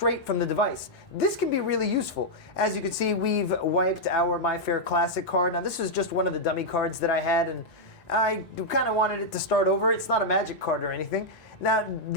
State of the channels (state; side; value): late; right; 1.9 ms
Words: from the device. This can be really useful. As you can see, we've wiped our MyFair Classic card. Now this was just one of the dummy cards that I had, and I kind of wanted it to start over. It's not a magic card or anything. Now,